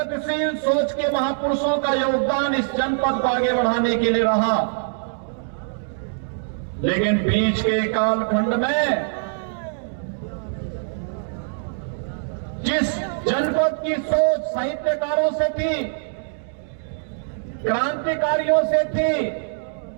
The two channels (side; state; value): left; silent; digital silence